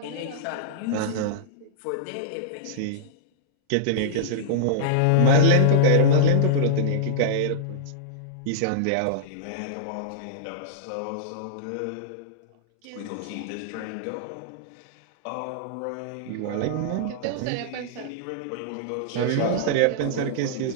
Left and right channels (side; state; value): both; different; correlation -0.02